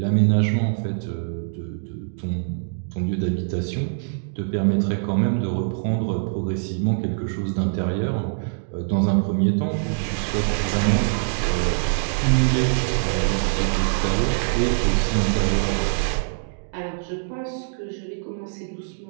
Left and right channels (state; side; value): silent; left; digital silence